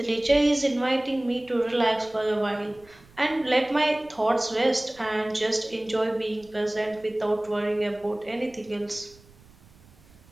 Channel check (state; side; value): noise; right; rumble, 27 dB below the sound